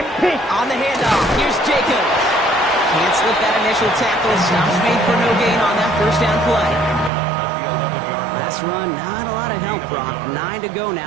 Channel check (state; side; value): drops out; left; at 7.1 s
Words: pin. On the handoff, here's Jacobs. Can't slip that initial tackle. Stops made for no gain on that 1st down play. Last run, not a lot of help, Brock. 9 to go